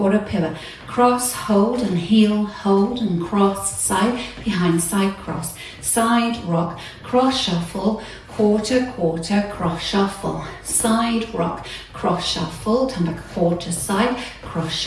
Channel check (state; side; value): identical; both; correlation 1.00